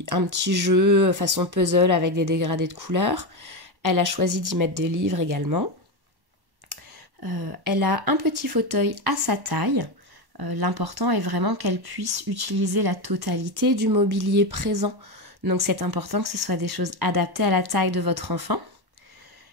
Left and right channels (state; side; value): late; left; 1.1 ms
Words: jeu façon puzzle avec des dégradés de couleurs. Elle a choisi d'y mettre des livres également. Elle a un petit fauteuil à sa taille. L'important est vraiment qu'elle puisse utiliser la totalité du mobilier présent. Donc c'est important que ce soit des choses adaptées à la taille de votre enfant